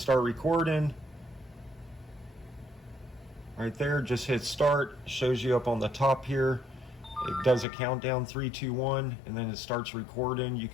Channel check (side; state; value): right; drops out; at 7.7 s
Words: start recording, right there, just hit start. Shows you up on the top here. It does a countdown, 3, 2, 1, and then it starts recording. You